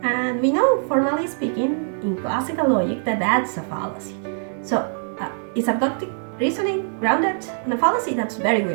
And we know, formally speaking, in classical logic, that that's a fallacy. So, is abductive reasoning grounded in a fallacy? That's very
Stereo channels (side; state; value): left; silent; 64 dB below the other